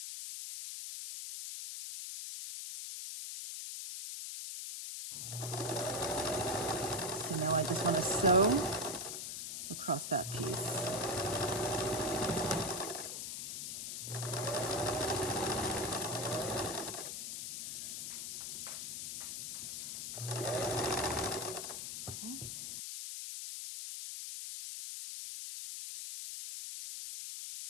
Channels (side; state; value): left; noise; hiss, 5 dB below the sound